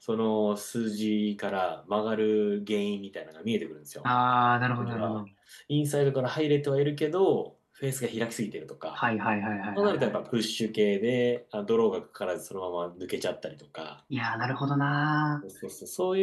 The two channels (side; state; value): both; identical; correlation 1.00